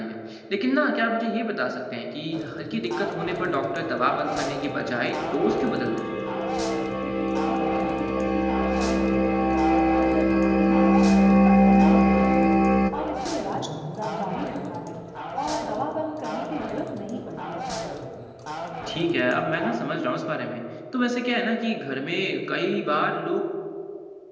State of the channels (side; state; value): both; identical; correlation 1.00